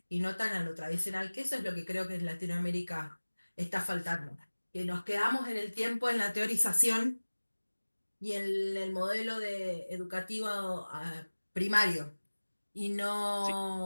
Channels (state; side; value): inverted; both; correlation -1.00